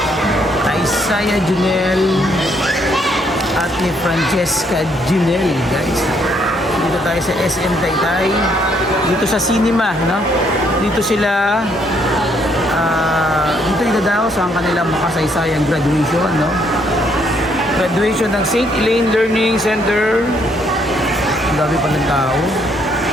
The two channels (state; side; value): normal; both; correlation 0.70